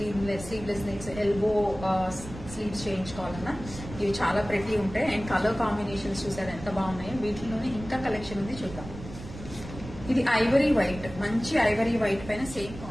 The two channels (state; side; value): noise; right; rumble, 13 dB below the sound